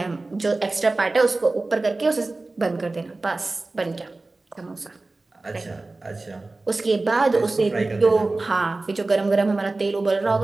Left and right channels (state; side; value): quieter; left; 3.2 dB